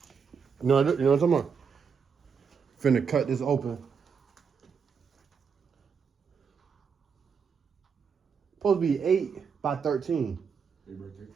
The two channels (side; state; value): left; quieter; 6.2 dB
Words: you know what I'm talking about? Finna cut this open. Supposed to be 8 by 13. 8 by